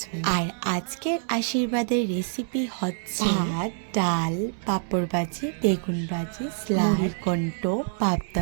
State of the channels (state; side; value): silent; left; 61 dB below the other